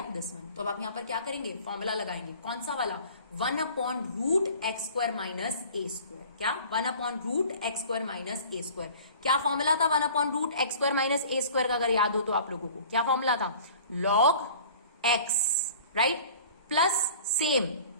दिस वन। तो अब आप यहां पर क्या करेंगे, फॉर्मूला लगाएंगे, कौन सा वाला, 1 upon root x square minus ए स्क्वायर। क्या, 1 upon root x square minus ए स्क्वायर। क्या फॉर्मूला था 1 upon root x square minus ए स्क्वायर का, अगर याद हो तो आप लोगों को क्या फॉर्मूला था, log X, right, plus same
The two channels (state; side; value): inverted; both; correlation -0.45